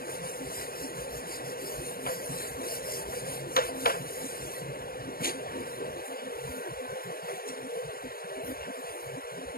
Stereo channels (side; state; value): right; late; 0.43 ms